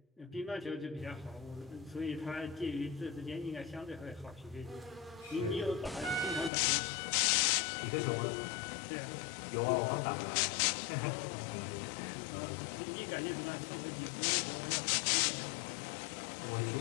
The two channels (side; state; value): right; drops out; at 6.5 s